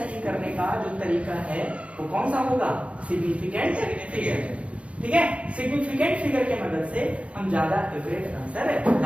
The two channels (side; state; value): left; late; 0.062 ms